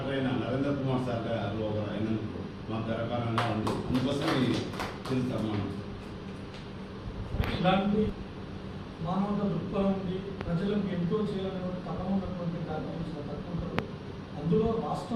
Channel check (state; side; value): identical; both; correlation 1.00